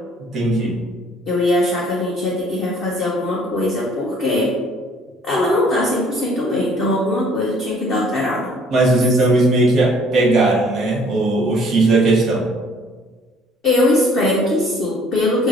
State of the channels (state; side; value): normal; both; correlation 0.58